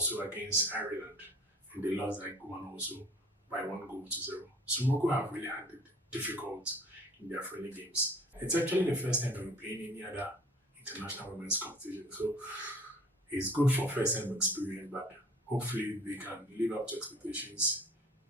against Ireland, and they lost that one also by 1 goal to 0. So Morocco have really had it difficult in their friendly games. It's actually the first time they're playing any other international women's competition. So it's good for first time experience, but hopefully they can live up to expectations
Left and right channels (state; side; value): normal; both; correlation 0.49